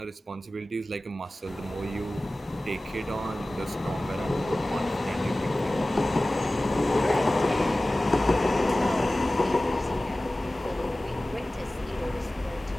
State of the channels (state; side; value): normal; both; correlation 0.97